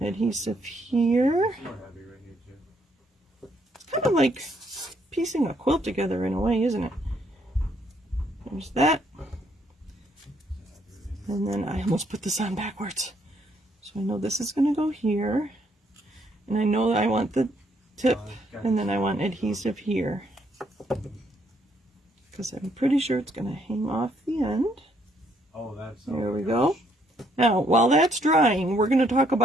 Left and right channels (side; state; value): both; normal; correlation 0.70